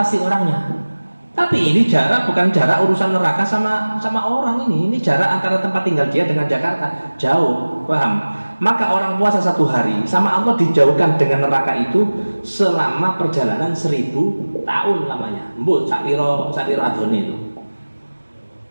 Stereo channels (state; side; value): inverted; both; correlation -1.00